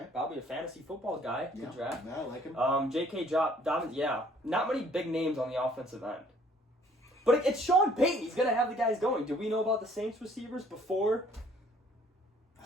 Probably a fantasy football guy to draft. Yeah, I like him. J.K. Dobbins, not many big names on the offensive end. But it's Sean Payton. He's going to have the guys going. Did we know about the Saints receivers before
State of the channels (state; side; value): normal; both; correlation 0.59